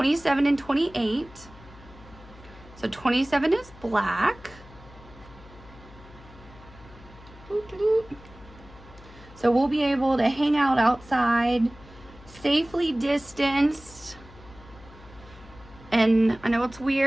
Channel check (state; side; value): noise; left; hum, 21 dB below the sound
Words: and 28. So 27 is black. So we'll be able to hang out outside, safely distanced. And I know it's